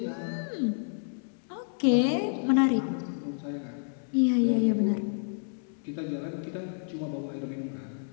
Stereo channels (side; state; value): right; silent; 58 dB below the other